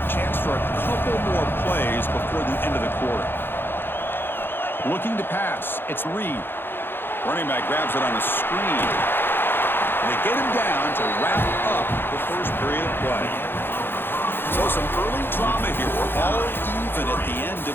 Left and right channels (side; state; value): right; late; 0.10 ms